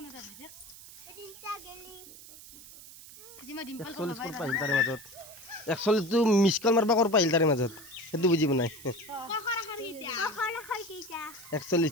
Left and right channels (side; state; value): right; noise; hiss, 17 dB below the sound